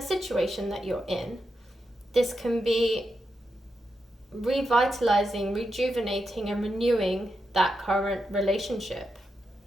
situation that you're in. This can be revitalizing, rejuvenating and renewing that current relationship.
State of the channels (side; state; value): both; normal; correlation 0.86